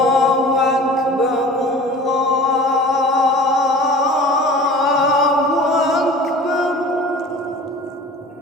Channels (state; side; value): normal; both; correlation 0.42